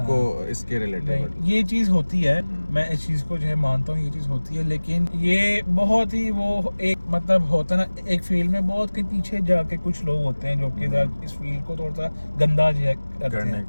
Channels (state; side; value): inverted; both; correlation -1.00